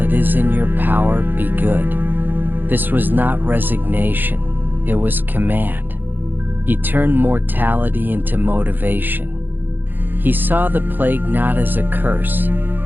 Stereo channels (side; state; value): left; late; 0.091 ms